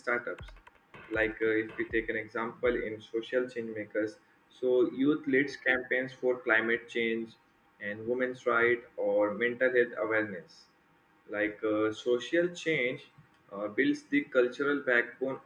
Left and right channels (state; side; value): identical; both; correlation 1.00